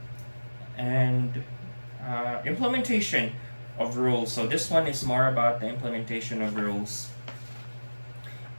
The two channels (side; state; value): both; inverted; correlation -1.00